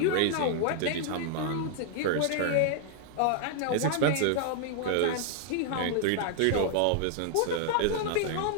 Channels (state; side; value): different; both; correlation 0.00